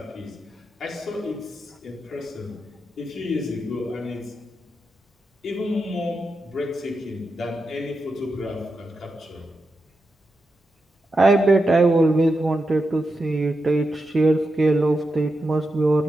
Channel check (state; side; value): normal; both; correlation 0.88